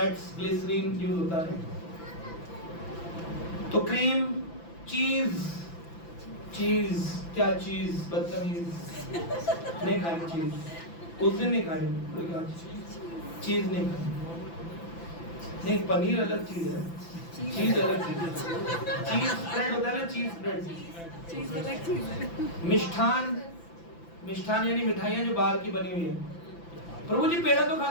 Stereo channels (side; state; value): right; late; 5.9 ms